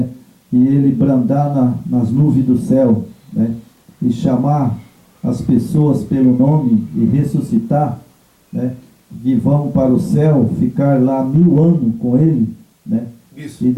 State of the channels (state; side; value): identical; both; correlation 1.00